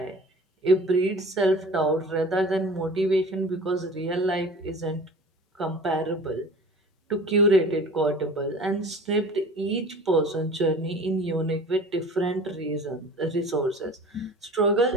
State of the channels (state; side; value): normal; both; correlation 0.41